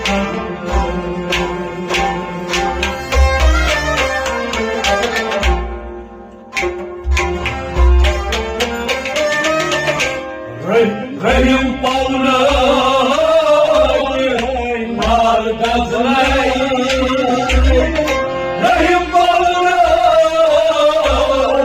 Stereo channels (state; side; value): identical; both; correlation 1.00